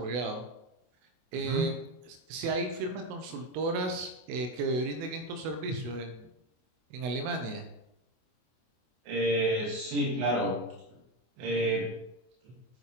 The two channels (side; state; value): left; late; 24 ms